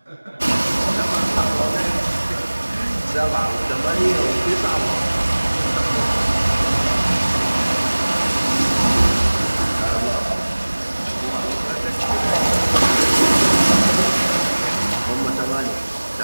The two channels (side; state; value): both; inverted; correlation -1.00